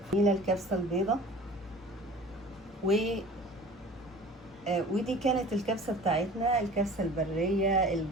هنا الكبسه البيضه ودي كانت الكبسة بتاعتنا، الكبسة البرية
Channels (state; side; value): normal; both; correlation 0.43